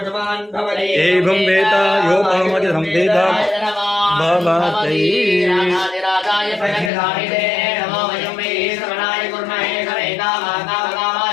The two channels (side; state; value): right; drops out; at 6.9 s